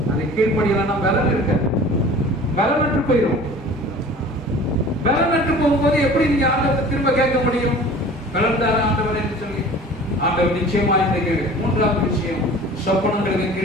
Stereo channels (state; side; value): normal; both; correlation 0.43